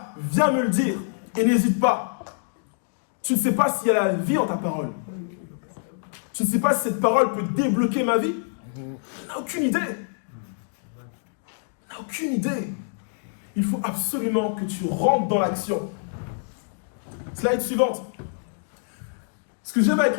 viens me le dire et n'hésite pas. Tu ne sais pas s'il y a la vie en ta parole. Tu ne sais pas si cette parole peut débloquer ma vie. Tu n'as aucune idée. Tu n'as aucune idée. Il faut absolument que tu rentres dans l'action. Slide suivante. Ce que j'aime avec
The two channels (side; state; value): right; silent; digital silence